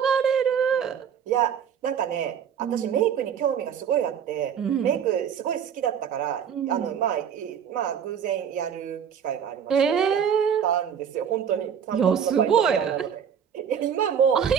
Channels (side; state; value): left; quieter; 8.0 dB